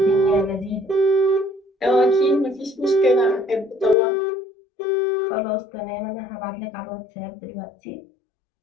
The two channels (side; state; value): right; drops out; at 4.0 s